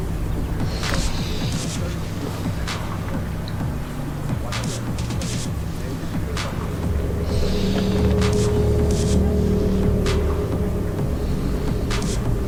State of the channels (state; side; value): identical; both; correlation 1.00